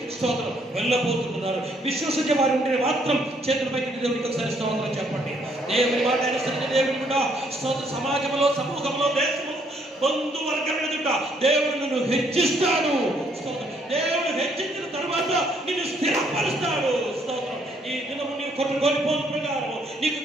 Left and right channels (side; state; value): both; normal; correlation 0.68